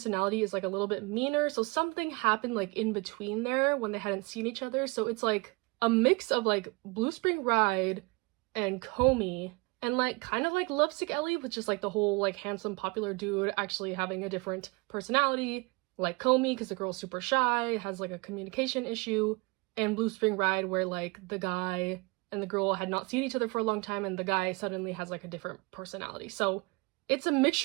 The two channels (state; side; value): quieter; left; 27.0 dB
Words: is like a little bit meaner, so something happened like in between there when they hadn't seen each other. So it's like a mix of like Blue Spring Ride and Comey, and like kind of like Lovesick Ellie, with just like the whole like handsome popular dude actually having a different personality, like Comey because the girl's super shy, has like a communication issue, and Blue Spring Ride where like the guy and the girl had not seen each other for a long time and the guy suddenly has like a different personality. So it's a